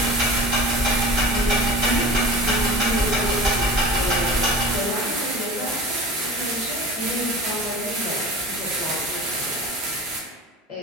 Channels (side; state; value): both; normal; correlation 0.37